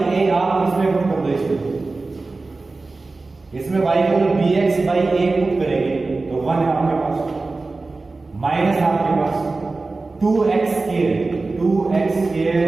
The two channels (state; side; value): quieter; left; 3.6 dB